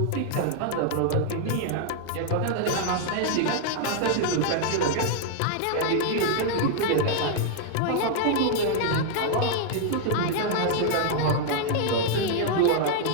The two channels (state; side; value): different; both; correlation 0.00